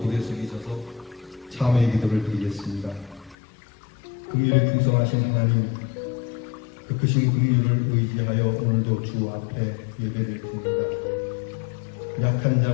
고개 숙이셔서 참회의 기도를 드리겠습니다. 긍휼이 풍성하신 하나님, 그 크신 긍휼을 의지하여 오늘도 주 앞에 예배를 드립니다. 약한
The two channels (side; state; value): right; drops out; at 3.4 s